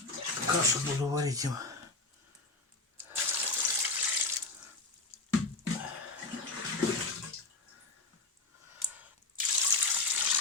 кашу буду варить им.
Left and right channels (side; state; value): right; quieter; 3.4 dB